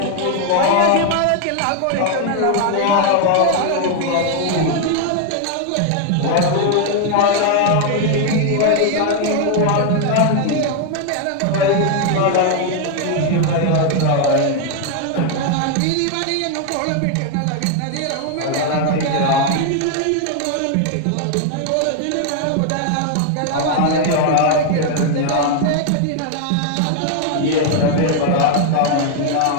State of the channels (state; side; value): different; both; correlation 0.01